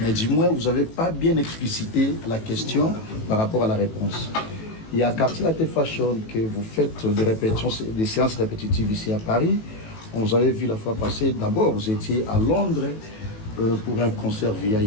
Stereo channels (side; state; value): right; late; 18 ms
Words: du moins, vous n'avez pas bien explicité la question par rapport à la réponse. Il y a Quartier Latin Fashion que vous faites des séances répétitives ici à Paris. On vous avait vu la fois passée. D'abord, vous étiez à Londres pour un concert